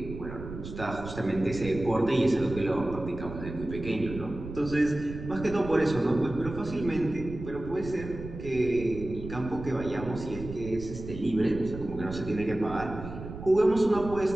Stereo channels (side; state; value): right; noise; rumble, 10 dB below the sound